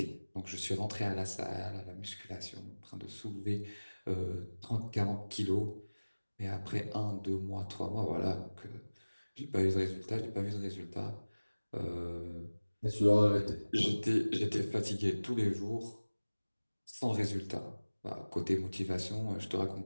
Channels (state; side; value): inverted; both; correlation -1.00